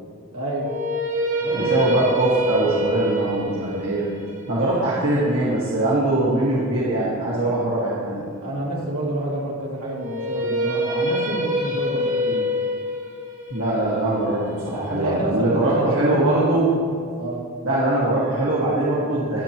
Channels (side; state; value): both; normal; correlation 0.24